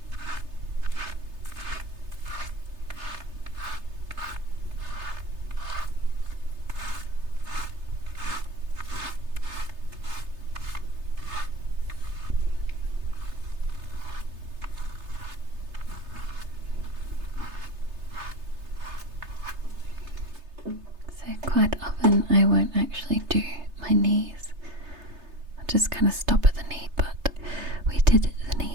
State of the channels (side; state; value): left; late; 3.3 ms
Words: So quite often I won't actually do my knees. I'll just kind of stop at the knee, but we did the